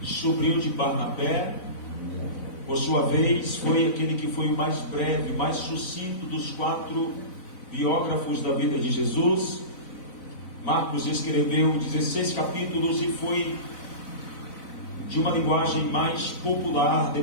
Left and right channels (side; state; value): right; late; 4.0 ms